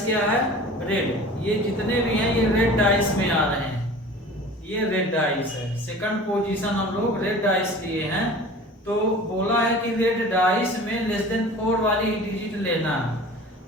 क्या है? रेड। ये जितने भी हैं ये रेड डाइस में आ रहे हैं, ये रेड डाइस है। सेकंड पोजीशन हम लोग रेड डाइस लिए हैं। तो बोला है कि रेड डाइस में लेस देन 4 वाली डिजिट लेना है।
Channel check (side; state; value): both; normal; correlation 0.41